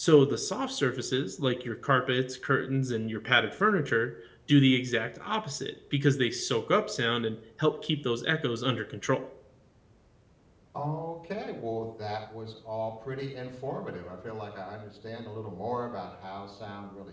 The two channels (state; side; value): identical; both; correlation 1.00